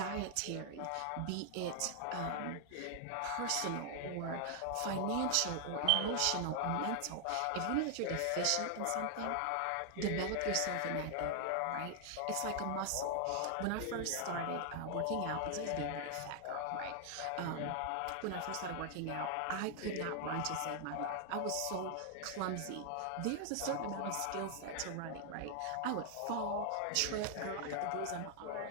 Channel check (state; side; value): different; both; correlation 0.00